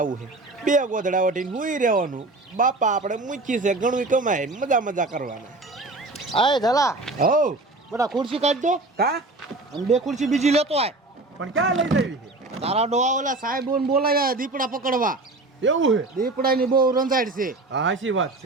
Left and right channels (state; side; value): quieter; left; 3.1 dB